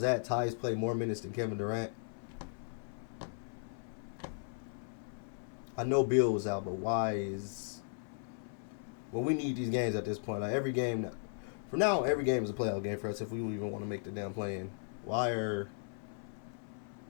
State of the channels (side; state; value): right; silent; 53 dB below the other